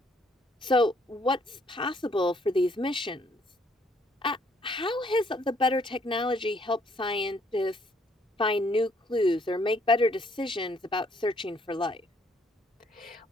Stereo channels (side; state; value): both; normal; correlation 0.66